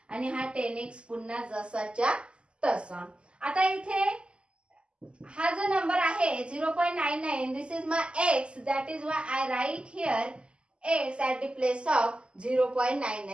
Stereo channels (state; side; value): late; left; 0.052 ms